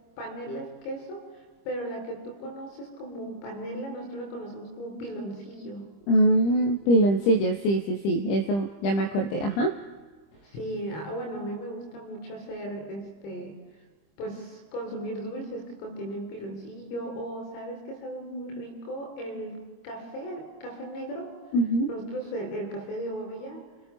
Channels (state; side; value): late; right; 25 ms